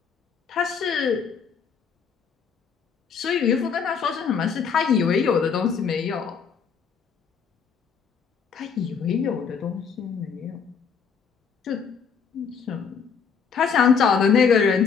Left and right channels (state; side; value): quieter; right; 6.3 dB